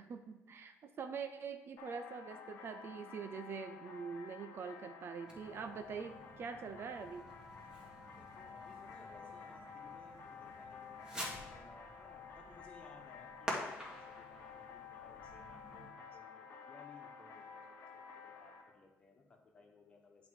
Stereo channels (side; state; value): both; normal; correlation 0.57